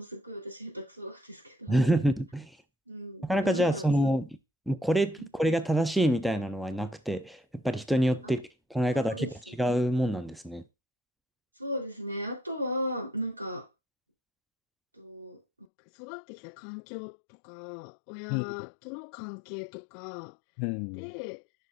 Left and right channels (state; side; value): drops out; right; at 15.7 s